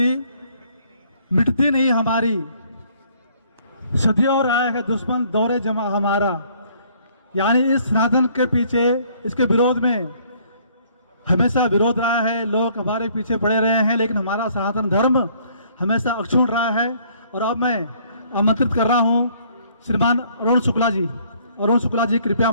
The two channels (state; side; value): inverted; both; correlation -0.62